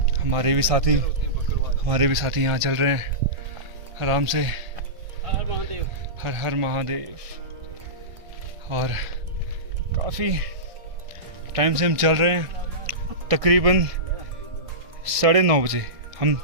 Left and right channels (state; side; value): late; left; 1.6 ms